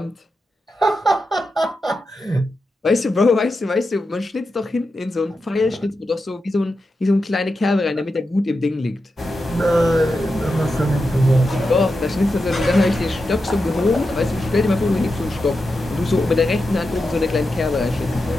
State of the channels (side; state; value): both; normal; correlation 0.89